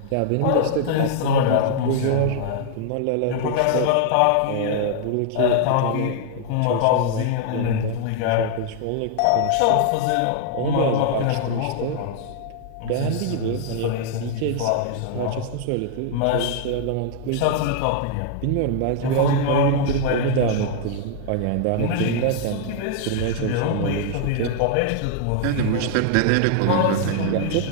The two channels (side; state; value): both; different; correlation 0.00